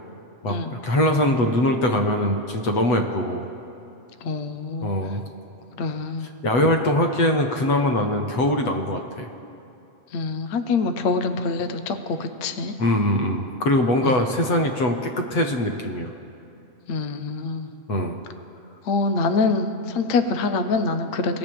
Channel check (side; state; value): right; late; 8.0 ms